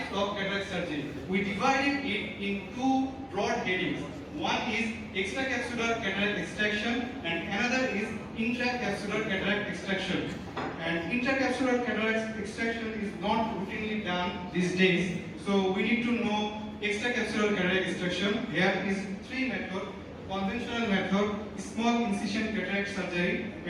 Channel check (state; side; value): identical; both; correlation 1.00